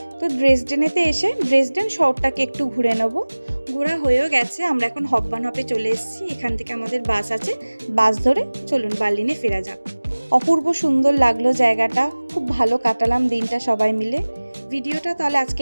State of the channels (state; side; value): inverted; both; correlation -1.00